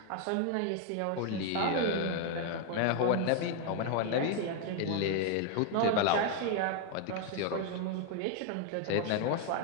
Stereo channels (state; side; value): different; both; correlation 0.00